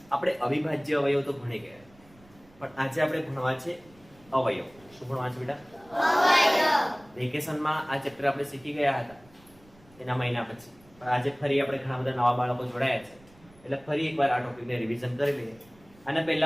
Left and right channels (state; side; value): noise; right; rumble, 27 dB below the sound